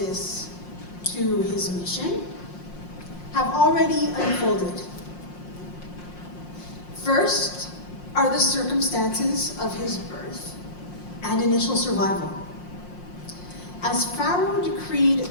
to his mission have already unfolded. First are the circumstances of his birth and initial survival. As Pharaoh decreed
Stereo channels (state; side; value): late; right; 5.6 ms